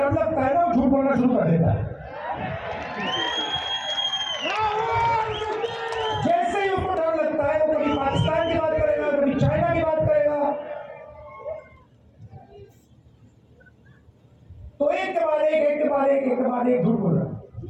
लगता है ना, वो झूठ बोलना शुरू कर देता है। जैसे ही उसको डर लगता है, वो कभी पाकिस्तान की बात करेगा, कभी चाइना की बात करेगा, तो एक के बाद एक झूठ बोल रहा।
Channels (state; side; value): identical; both; correlation 1.00